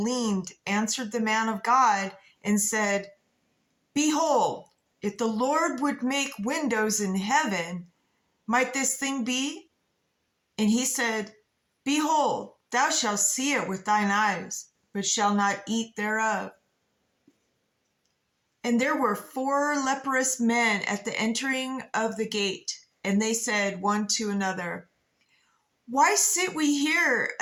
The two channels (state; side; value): identical; both; correlation 1.00